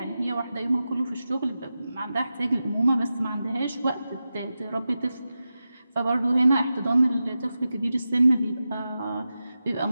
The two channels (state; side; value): inverted; both; correlation -0.92